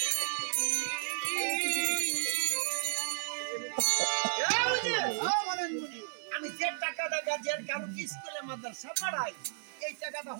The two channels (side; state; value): left; silent; 56 dB below the other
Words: আমি যে টাকাটা গাজের কারো স্কুলে মাদ্রাসা পড়াই এই টাকাটা